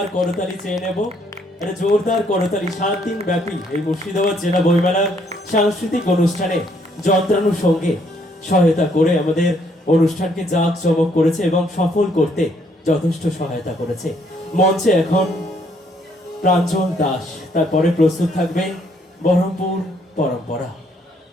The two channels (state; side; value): normal; both; correlation 0.68